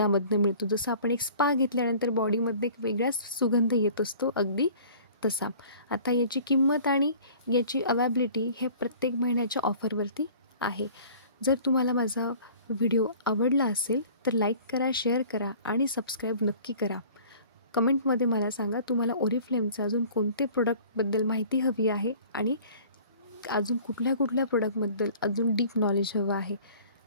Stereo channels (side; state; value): both; inverted; correlation -0.48